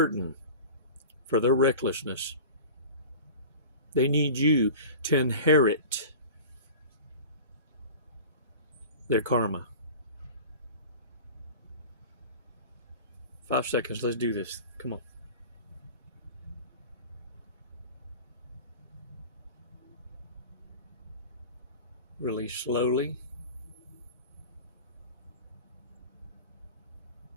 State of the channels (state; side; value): inverted; both; correlation -0.36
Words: for their recklessness. They need you to inherit their karma. 5 seconds. Let's do this. Come on. Release slowly.